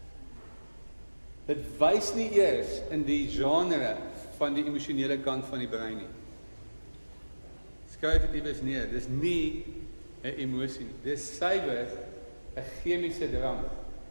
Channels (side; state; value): both; inverted; correlation -1.00